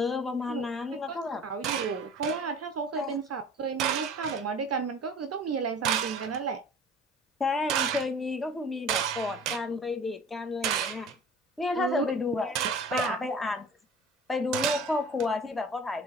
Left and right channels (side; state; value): both; normal; correlation 0.43